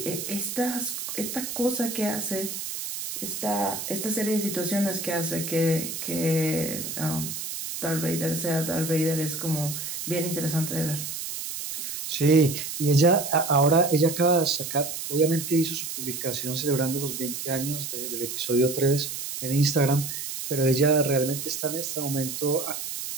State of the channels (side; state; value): right; noise; hiss, 6 dB below the sound